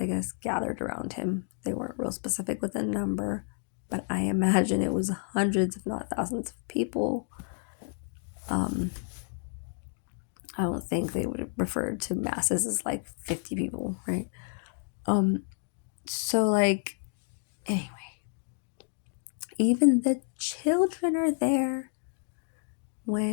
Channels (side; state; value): right; silent; 58 dB below the other